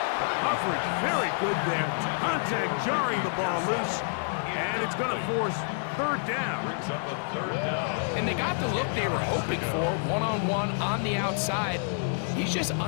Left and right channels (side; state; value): right; silent; digital silence